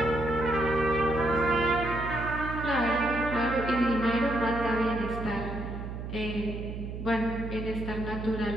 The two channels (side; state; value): right; noise; hum, 7 dB below the sound